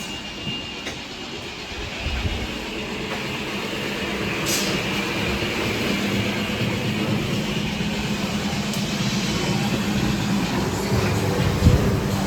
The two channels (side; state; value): both; identical; correlation 1.00